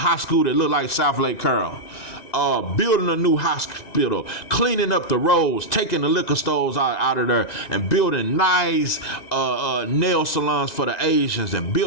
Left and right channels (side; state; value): right; late; 1.9 ms